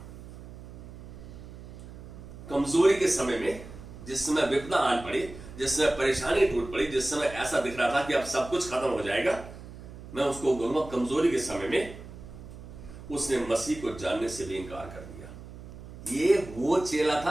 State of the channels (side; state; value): right; noise; hum, 15 dB below the sound